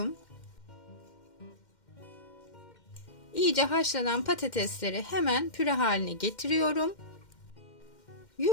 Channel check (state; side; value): late; right; 2.1 ms